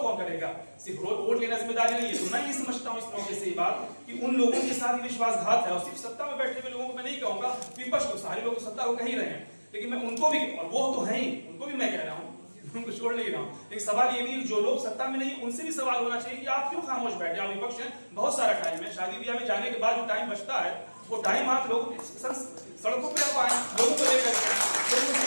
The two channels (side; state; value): both; inverted; correlation -1.00